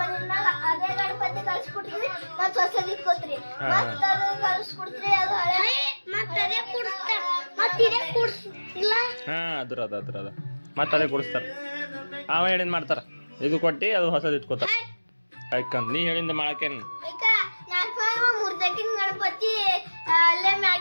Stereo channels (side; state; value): both; inverted; correlation -1.00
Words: ಅದೇ ಗಣಪತಿ ಕಳ್ಸಿಕೊಡ್ತೀವಿ ಮತ್ ಹೊಸದ್ ಇಟ್ಕೋತ್ರಿ ಮತ್ ಅದು ಕಳ್ಸಿಕೊಡ್ತೀರಿ ಅದು ಹಳೆ ಮತ್ ಅದೇ ಕೂಡಿಸ್ತಾರ ಮತ್ ಇದೇ ಕೂಡಿಸ್ಲ ಹಾ ಅದ ಮತ್ತೆ ಅದೇ ಕೊಡಿಸ್ತಾರ ಅವ ಹೇಳಿದ್ ಮಾಡ್ತಾರ ಇದು ಕೊಟ್ಟಿ ಅದು ಹೊಸದ್ ಇಟ್ಕೋತಾರ ಯಾಕಂತ ನೀ ಹೇಳಿಂದ ಮಾಡಕೇನ್ ಈಗ ನಾಲ್ಕು ಮೂರ್ದಕ್ಕಿನ ಗಣಪತಿ ಅಲ್ಲೇ